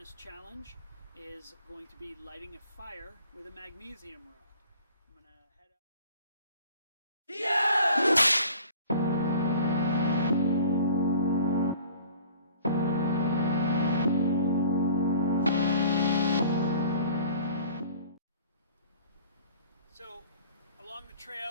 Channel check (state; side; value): inverted; both; correlation -0.49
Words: Challenge is going to be lighting a fire with a magnesium rod. I'm gonna head out. So along the